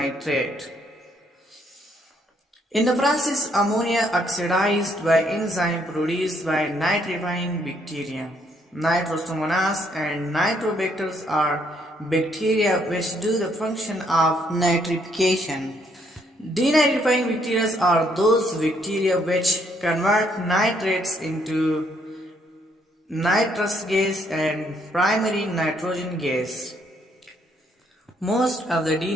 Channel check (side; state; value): both; normal; correlation 0.70